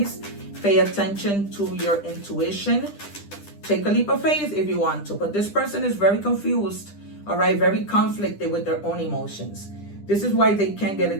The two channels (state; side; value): late; right; 10 ms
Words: Pay attention to your intuition. Take a leap of faith if you want to, but this person is very confused, all right, very conflicted with their own emotions. This is why they can't get